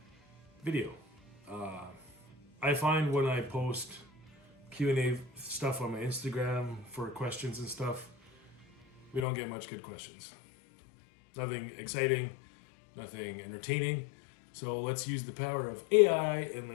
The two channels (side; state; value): right; drops out; at 9.2 s